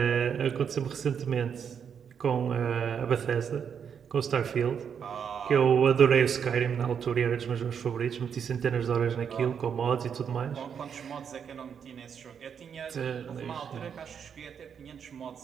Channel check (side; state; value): left; quieter; 7.4 dB